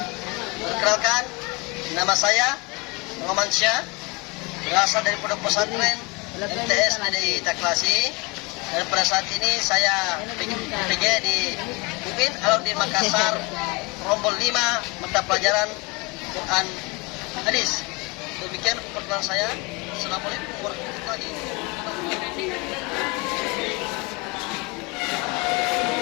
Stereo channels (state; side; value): quieter; right; 26.1 dB